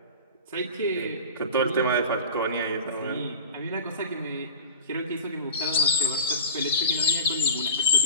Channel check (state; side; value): inverted; both; correlation -0.31